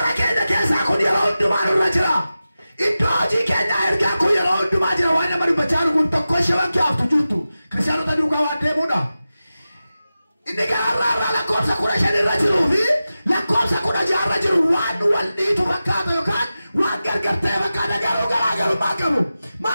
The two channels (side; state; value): both; inverted; correlation -0.94